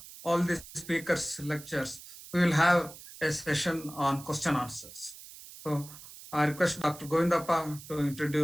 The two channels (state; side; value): noise; right; hiss, 16 dB below the sound